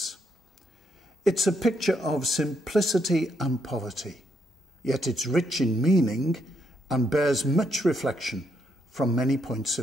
It's a picture of simplicity and poverty, yet it's rich in meaning and bears much reflection from many points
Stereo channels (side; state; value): both; normal; correlation 0.76